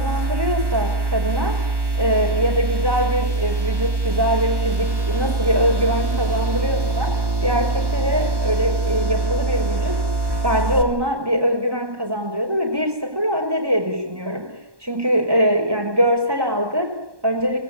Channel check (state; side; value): late; left; 1.2 ms